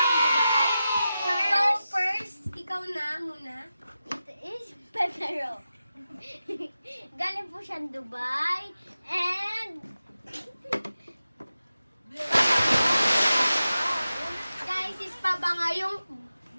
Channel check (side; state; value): both; inverted; correlation -0.92